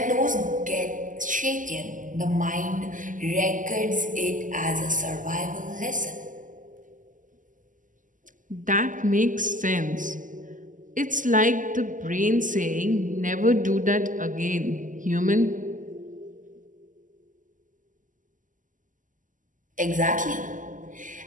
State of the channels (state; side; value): late; left; 0.38 ms